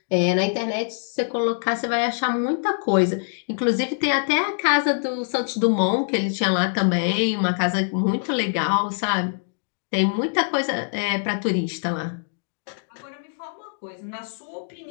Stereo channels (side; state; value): right; silent; digital silence